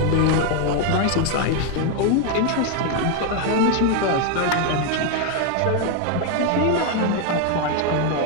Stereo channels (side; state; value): both; different; correlation 0.01